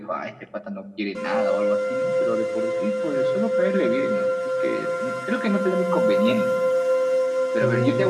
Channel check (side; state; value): both; identical; correlation 1.00